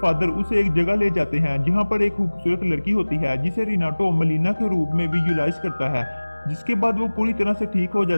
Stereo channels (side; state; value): both; inverted; correlation -1.00